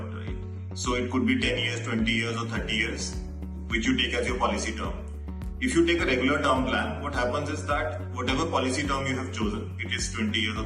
right? So it could be 10 years, 20 years or 30 years, which you take as your policy term. If you take a regular term plan, what happens is that whatever policy term you have chosen, it is 20 years or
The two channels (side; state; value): both; identical; correlation 1.00